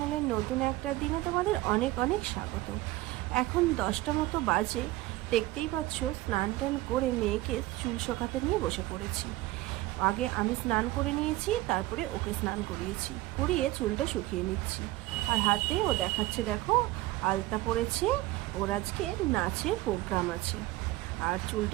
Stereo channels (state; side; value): quieter; left; 18.0 dB